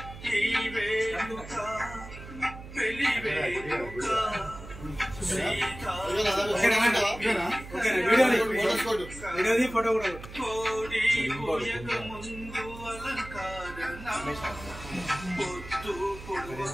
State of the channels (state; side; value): noise; right; hum, 14 dB below the sound